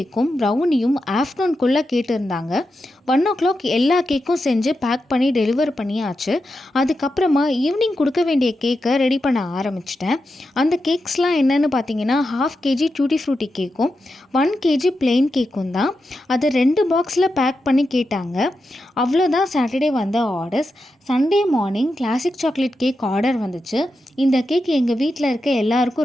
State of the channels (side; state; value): both; normal; correlation 0.88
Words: ப்ரௌனியும் ஆஃப்டர்நூன்குள்ளே கேட்டிருந்தாங்க. 1 o'clock எல்லா கேக்கும் செஞ்சு பேக் பண்ணி டெலிவர் பண்ணியாச்சு. அதுக்கப்புறமா ஈவினிங் கொடுக்க வேண்டிய கேக்கை ரெடி பண்ண ஆரம்பிச்சிட்டேன். அந்த கேக்ஸ்லாம் என்னென்னு பார்த்தீங்கன்னா 1/2 kg டூட்டி ஃப்ரூட்டி கேக்கும் 1 kg பிளெயின் கேக்கும் தான். அதை 2 பாக்ஸில் பேக் பண்ணி கேட்டாங்க. அவ்வளோதான் சாட்டர்டே வந்த orders. Sunday morning classic chocolate cake order வந்துச்சு. இந்த கேக் எங்கள் வீட்டில் இருக்க